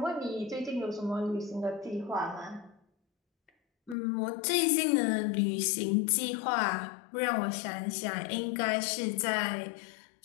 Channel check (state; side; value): drops out; right; at 4.0 s